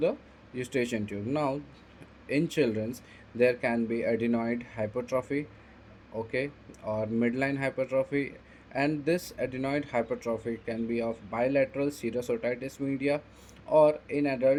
eustachian tube. Now in children's there can be adenoid hypertrophy, okay, or midline hypertrophy, and this adenoid hypertrophy can be of bilateral serous otitis media, or in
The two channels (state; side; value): identical; both; correlation 1.00